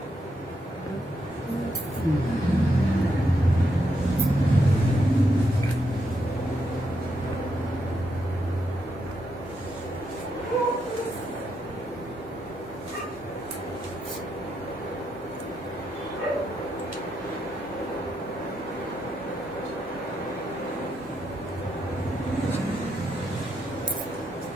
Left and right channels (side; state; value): both; normal; correlation 0.80